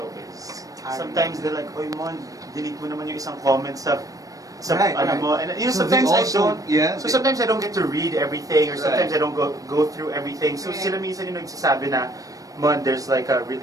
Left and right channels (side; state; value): left; late; 0.17 ms